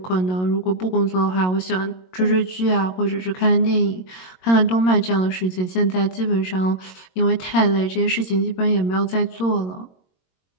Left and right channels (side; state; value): right; late; 22 ms